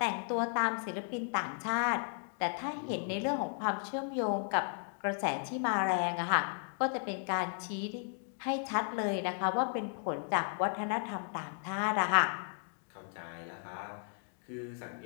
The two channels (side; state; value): right; silent; 55 dB below the other